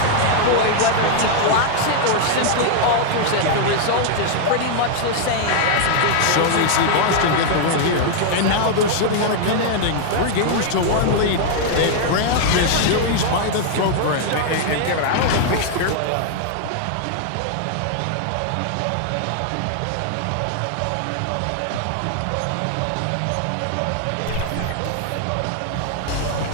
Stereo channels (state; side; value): different; both; correlation 0.00